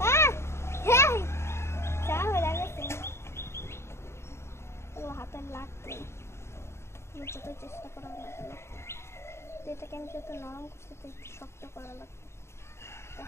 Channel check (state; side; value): late; right; 0.13 ms